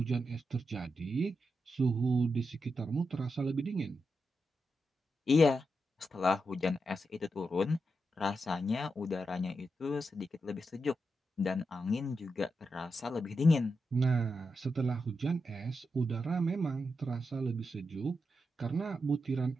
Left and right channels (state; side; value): normal; both; correlation 0.86